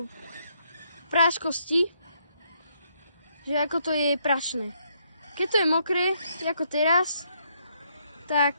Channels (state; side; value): inverted; both; correlation -0.73